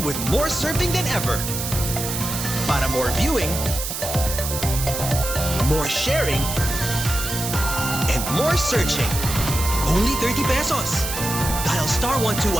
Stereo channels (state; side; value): noise; right; hiss, 5 dB below the sound